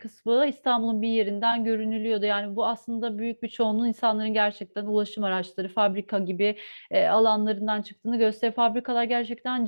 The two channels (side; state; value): both; inverted; correlation -1.00